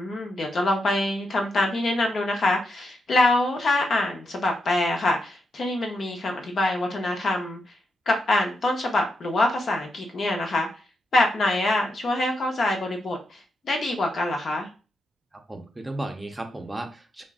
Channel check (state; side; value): normal; both; correlation 0.84